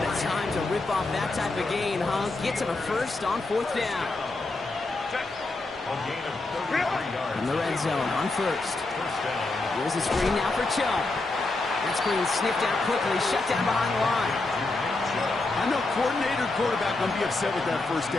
a time to rip off that type of gain, huh? Gets him a first on fourth down. A gain of 33 yards. In the red zone on first. First down. Here's the screen now for Chubb. That screen sniffed out quickly, shut down behind the line. I know coordinator quarterback going to be upset with that first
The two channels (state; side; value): quieter; right; 3.2 dB